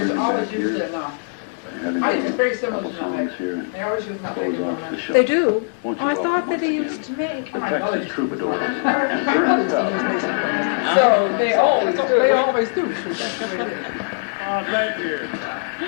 is always used in, having I think it's very a similar couple to nutmeg. songs here and They always use nutmeg close in off the nutmeg. show. They do. Won't you Oh, I welcome thought that once they again used to make. the Texas Troubadours and My Ernest mother Tubb. used to use Mace. So they always do. They always do. Oh, thank you.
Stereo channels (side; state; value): right; silent; digital silence